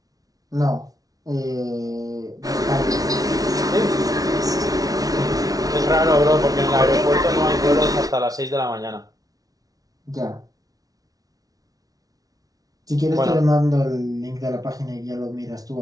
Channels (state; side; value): late; left; 0.18 ms